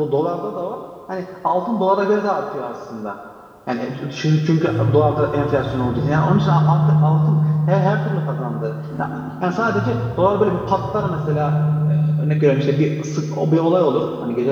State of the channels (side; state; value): both; identical; correlation 1.00